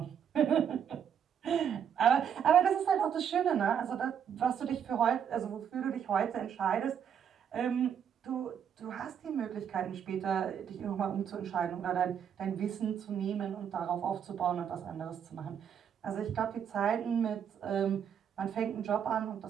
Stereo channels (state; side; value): quieter; left; 8.3 dB